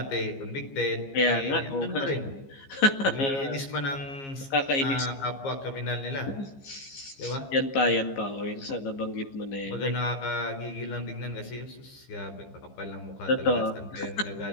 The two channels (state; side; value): late; right; 15 ms